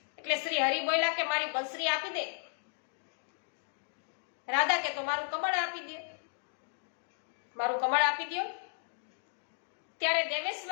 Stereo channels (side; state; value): right; silent; 55 dB below the other